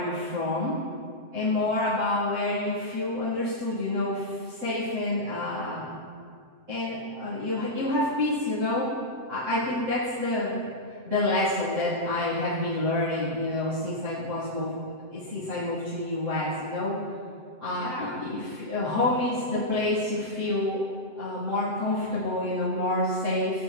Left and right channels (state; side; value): late; left; 7.8 ms